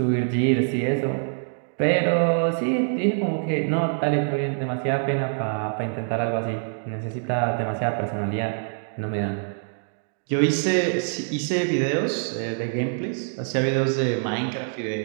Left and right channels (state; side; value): silent; left; digital silence